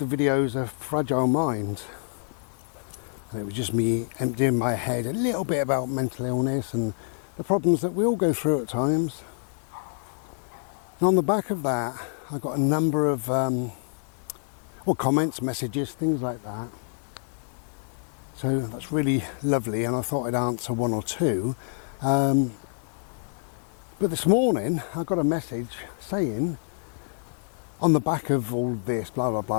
videos A Fragile Mind. And it was just me emptying my head a little bit about mental illness and the problems that we all go through at times. And on the back of that, I got a number of comments, messages, things like that. So that's really lovely, and I thought I'd answer 1 or 2. But this morning I got a message saying, on the back of all this, blah blah blah,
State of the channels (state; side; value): silent; right; digital silence